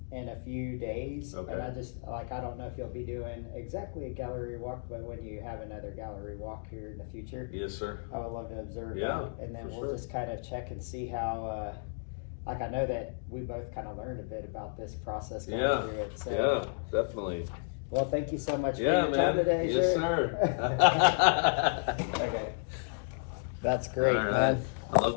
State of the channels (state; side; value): silent; right; digital silence